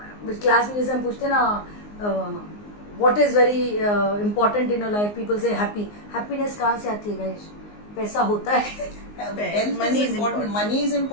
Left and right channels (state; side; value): late; right; 19 ms